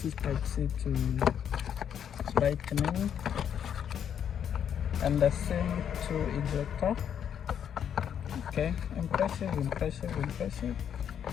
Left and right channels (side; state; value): right; quieter; 8.7 dB